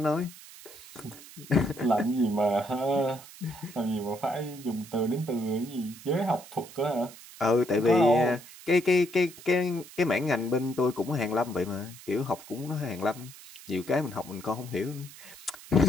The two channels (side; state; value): right; noise; hiss, 18 dB below the sound